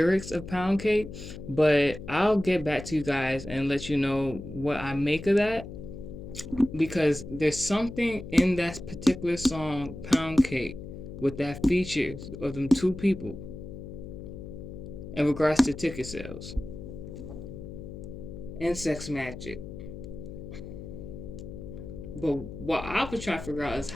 of Pound Cake, but I'll get back to you guys and let you know what I make of that because there's something in that particular song, Pound Cake, with that features of them two people in regards to ticket sales and sex magic. But what I was trying to figure out is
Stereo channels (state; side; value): noise; left; hum, 11 dB below the sound